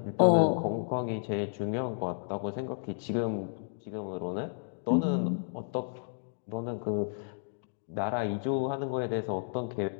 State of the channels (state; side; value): silent; right; digital silence